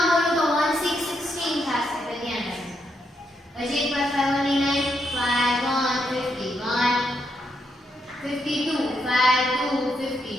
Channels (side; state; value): both; normal; correlation 0.79